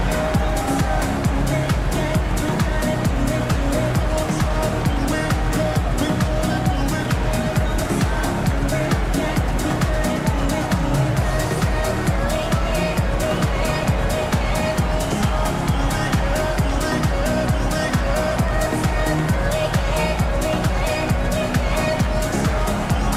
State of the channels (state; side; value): identical; both; correlation 1.00